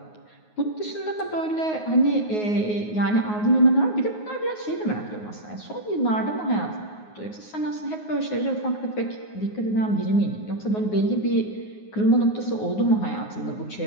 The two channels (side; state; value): right; late; 9.5 ms